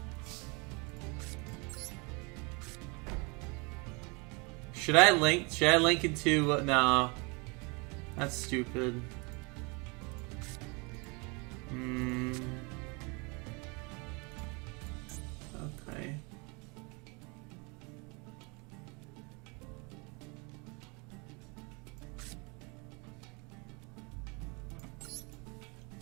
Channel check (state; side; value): quieter; left; 30.2 dB